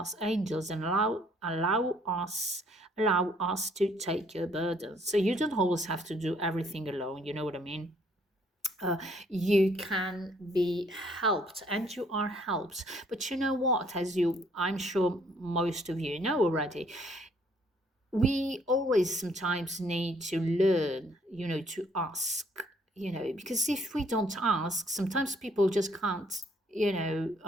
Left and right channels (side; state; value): both; normal; correlation 0.64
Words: angels, and allow us to take your burdens. So you don't always have to do everything alone, you know what I mean? You can be helped, and you are helped. But you know what, as I'm sure most of you know already, we always sometimes need to learn, to ask, because if we don't ask, sometimes people just can't,